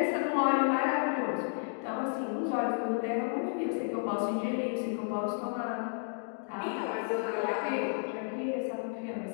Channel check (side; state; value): right; silent; 56 dB below the other